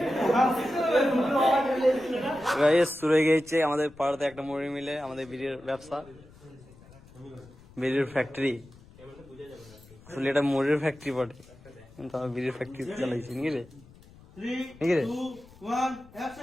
গাইস শুরু হয়ে গেছে আমাদের পাড়াতে একটা মুড়ি মিলে আমাদের বিড়ির ব্যবসা, বিড়ির ফ্যাক্টরি। আসলে এটা মুড়ির ফ্যাক্টরি বটে, কিন্তু আমি বিড়ির ফ্যাক্টরি চালাইছি নাকি রে? নাকি রে?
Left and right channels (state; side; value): noise; left; rumble, 23 dB below the sound